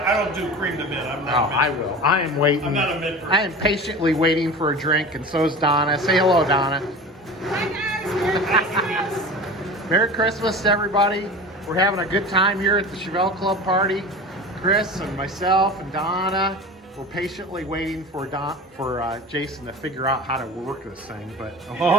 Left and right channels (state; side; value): normal; both; correlation 0.34